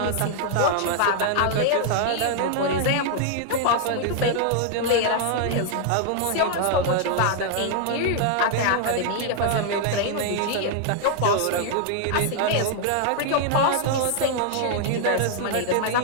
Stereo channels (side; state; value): both; different; correlation 0.00